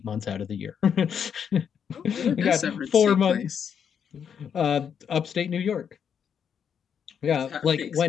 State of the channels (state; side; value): quieter; right; 7.7 dB